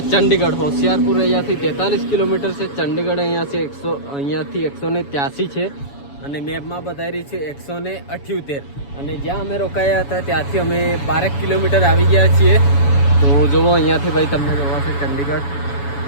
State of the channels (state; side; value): late; right; 7.1 ms